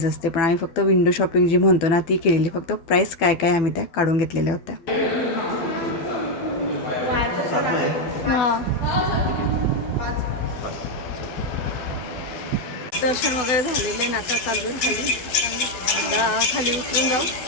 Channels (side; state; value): right; late; 12 ms